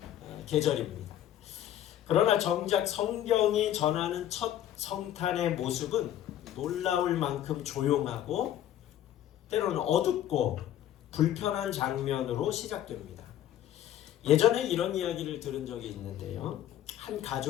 계절입니다. 그러나 정작 성경이 전하는 첫 성탄의 모습은 놀라울 만큼 조용하고 때로는 어둡고 불편한 장면으로 시작됩니다. 예전에 이런 이야기를 들은 적이 있는데요. 한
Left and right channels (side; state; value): right; quieter; 11.7 dB